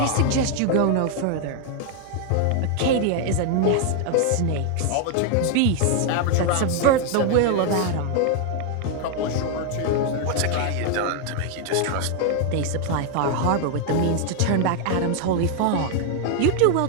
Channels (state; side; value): different; both; correlation 0.00